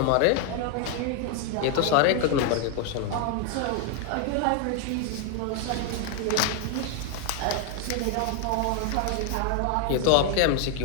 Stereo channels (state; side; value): different; both; correlation 0.00